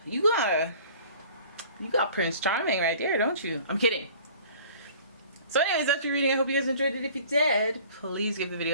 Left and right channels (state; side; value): inverted; both; correlation -0.48